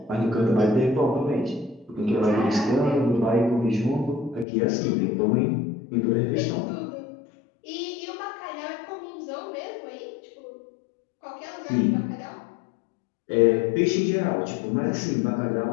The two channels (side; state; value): right; drops out; at 4.5 s